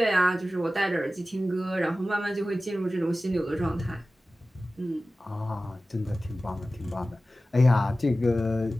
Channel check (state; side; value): normal; both; correlation 0.96